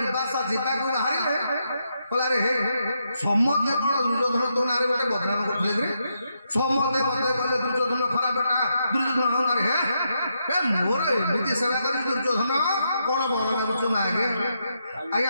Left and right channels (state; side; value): inverted; both; correlation -0.81